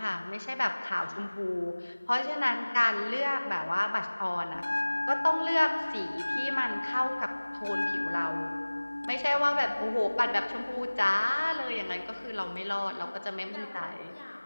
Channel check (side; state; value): both; inverted; correlation -1.00